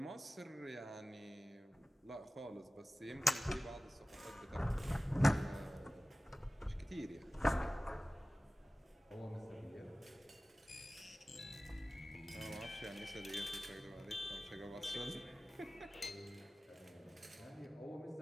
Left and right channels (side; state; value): both; normal; correlation 0.97